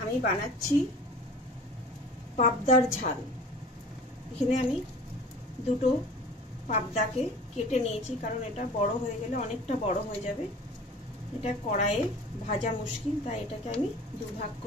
আমি বানাচ্ছি পাবদার ঝাল। এখানে আমি দুটো পাবদাকে কেটে নিয়েছি, কারণ এটা বড় হয়ে গেলে অনেকটা বড় হয়ে যাবে। এটা কড়াইয়ে ভাজা মুশকিল, তাই এটাকে আমি দুভাগ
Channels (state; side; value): normal; both; correlation 0.43